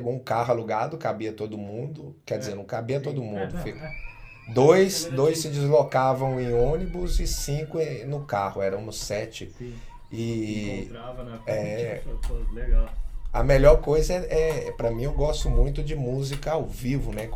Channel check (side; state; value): both; identical; correlation 1.00